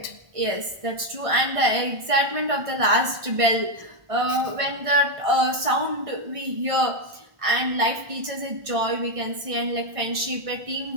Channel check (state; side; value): late; left; 1.6 ms